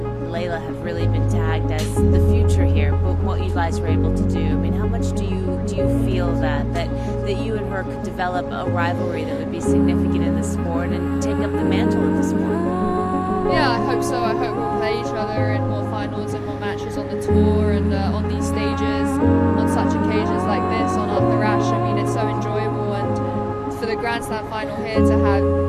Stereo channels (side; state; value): both; identical; correlation 1.00